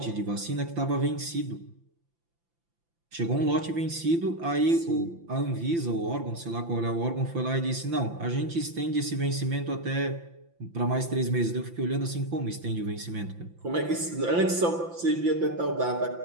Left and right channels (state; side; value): late; left; 5.9 ms